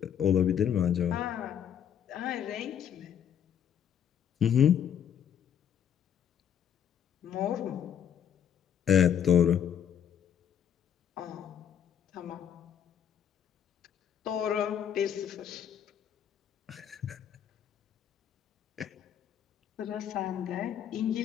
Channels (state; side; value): quieter; right; 9.0 dB